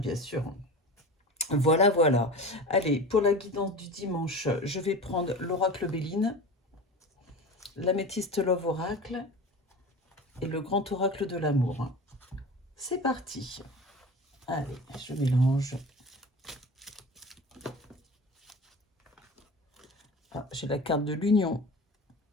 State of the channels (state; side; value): normal; both; correlation 0.33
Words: sûr. Voilà, voilà. Allez, pour la guidance du dimanche, je vais prendre l'oracle Béline, l'améthyste Love Oracle et le grand oracle de l'amour. C'est parti. Allez, je mélange. Ah, j'ai la carte de l'union,